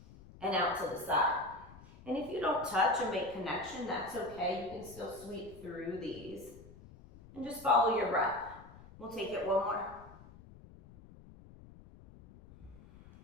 and out to the side. And if you don't touch and make connection, that's okay. You can still sweep through these and just follow your breath. We'll take it one more.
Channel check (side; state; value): left; noise; rumble, 20 dB below the sound